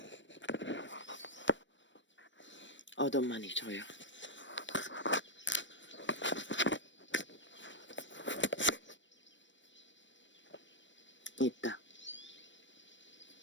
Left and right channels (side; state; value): right; late; 0.54 ms